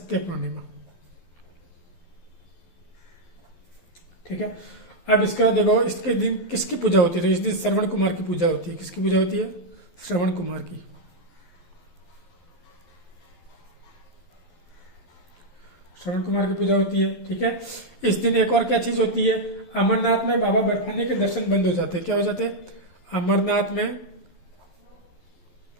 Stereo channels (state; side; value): late; right; 12 ms